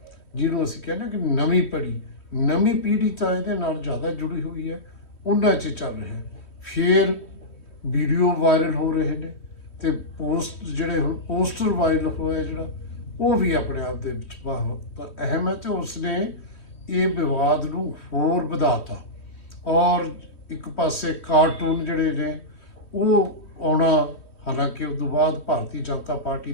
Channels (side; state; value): right; late; 3.1 ms